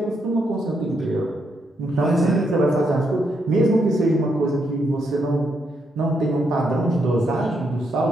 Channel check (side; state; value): both; normal; correlation 0.78